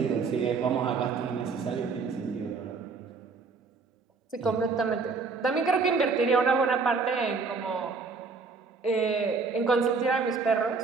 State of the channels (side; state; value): left; quieter; 4.6 dB